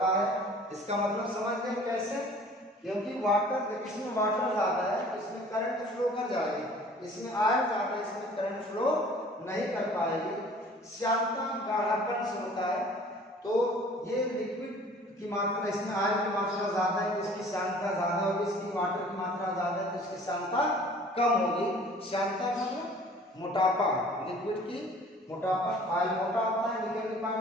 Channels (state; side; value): normal; both; correlation 0.50